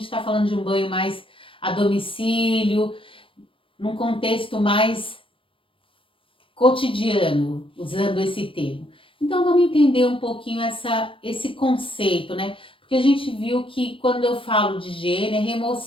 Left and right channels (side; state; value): right; late; 0.25 ms